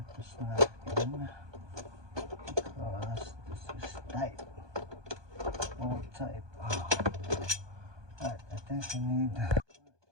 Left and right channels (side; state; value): left; late; 1.2 ms